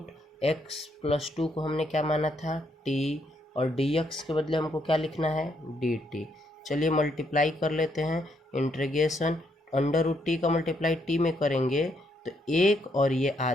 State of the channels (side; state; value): both; normal; correlation 0.74